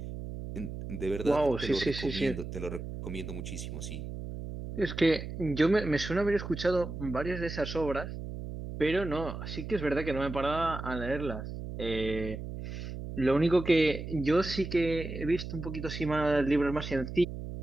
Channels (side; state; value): right; noise; hum, 8 dB below the sound